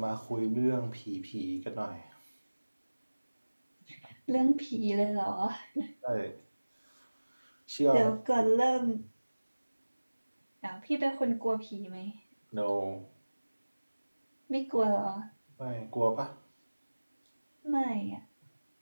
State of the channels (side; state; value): both; inverted; correlation -1.00